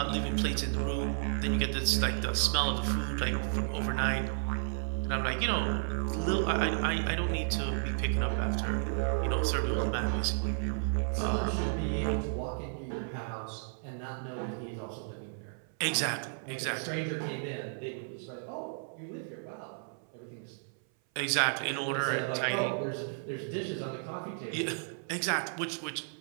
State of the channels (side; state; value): left; silent; 56 dB below the other